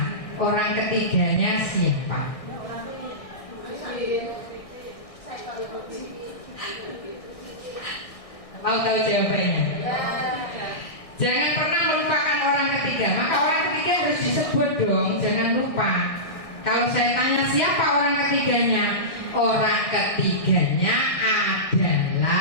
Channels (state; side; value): late; right; 1.6 ms